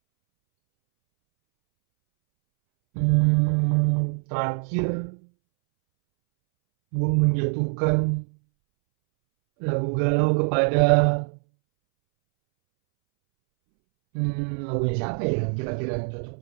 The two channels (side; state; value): left; silent; 63 dB below the other